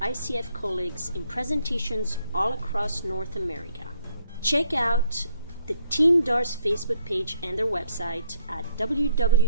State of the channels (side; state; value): both; inverted; correlation -0.68